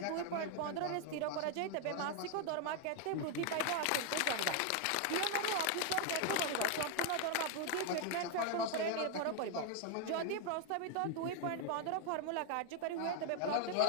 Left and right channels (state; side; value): different; both; correlation 0.00